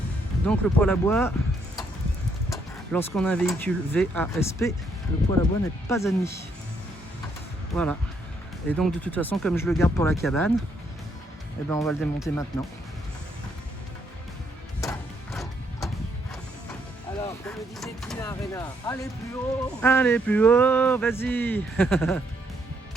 Donc le poêle à bois, lorsqu'on a un véhicule VASP, le poêle à bois n'est pas admis. Voilà. Et donc de toute façon, comme je le garde pour la cabane, eh ben on va le démonter maintenant. Alors, comme le disait Tina Arena, allez plus haut. Allez, plus haut, vas-y.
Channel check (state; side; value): normal; both; correlation 0.73